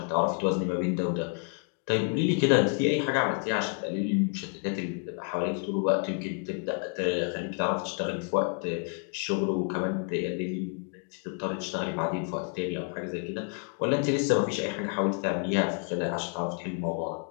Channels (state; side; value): quieter; right; 38.4 dB